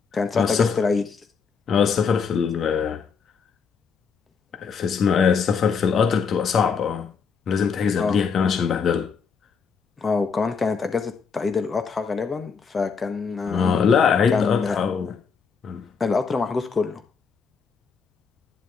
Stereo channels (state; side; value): quieter; right; 5.8 dB